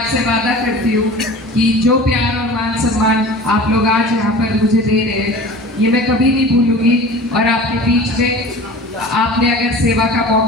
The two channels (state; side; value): normal; both; correlation 0.39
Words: वादा करती हूँ कि जो प्यार और मान सम्मान आप लोग आज यहाँ पर मुझे दे रहे हैं ये मैं कभी नहीं भूलूंगी। और आपके बीच में आपने अगर सेवा का